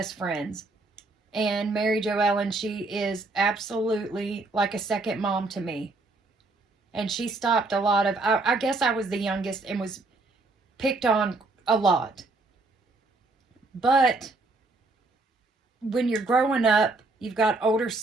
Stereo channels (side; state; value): left; quieter; 3.3 dB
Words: friends. And Mary Jo Ellen, she is absolutely like a second mom to me. And she stopped a lot of, I guess I was the youngest and was picked on a lot. But when you're growing up, you've got older